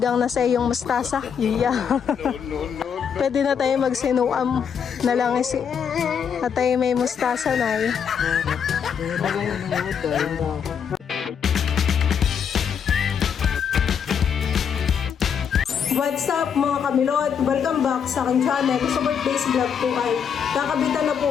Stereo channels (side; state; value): right; quieter; 7.4 dB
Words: na sa iyong mustasa? Yeah. Pwede na tayo magsinuam na lang at tayo may mustasa na eh. What's up mga kamilot? Welcome back sa aking channel. Sa birthdays vlog po ay kakabitan na po